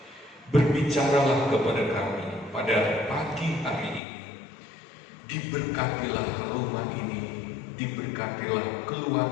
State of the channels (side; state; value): right; drops out; at 4.0 s